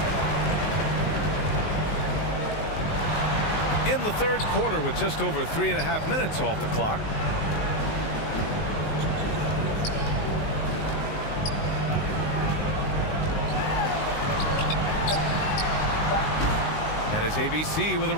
In the third quarter with just over 3.5 minutes off the clock. And it's ABC with a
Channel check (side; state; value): right; late; 19 ms